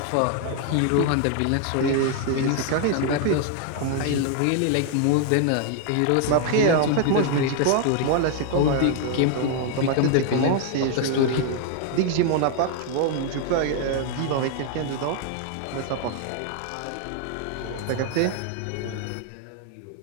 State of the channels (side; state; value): both; different; correlation 0.00